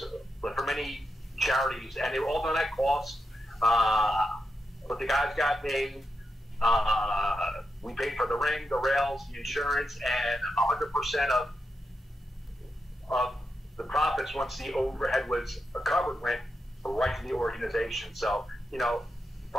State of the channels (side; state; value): both; normal; correlation 0.86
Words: for many charities, and they were all done at cost. But the guys got paid. We paid for the ring, the rails, the insurance, and 100% of the profits, once the overhead was covered, went right to the organization. So,